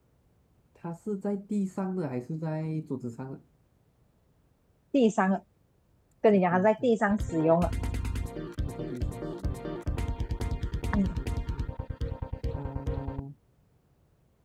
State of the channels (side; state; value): both; identical; correlation 1.00